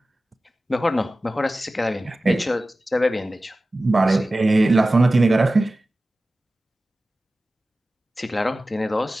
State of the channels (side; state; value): both; normal; correlation 0.96